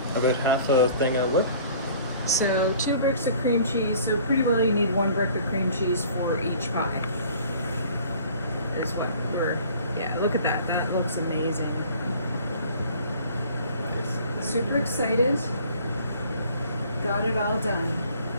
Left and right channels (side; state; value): both; inverted; correlation -0.51